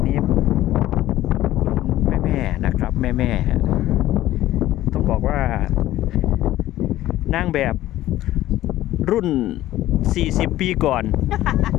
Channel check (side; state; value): right; quieter; 14.7 dB